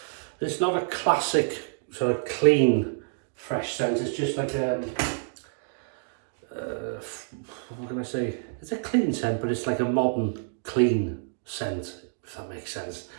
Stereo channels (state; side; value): silent; left; digital silence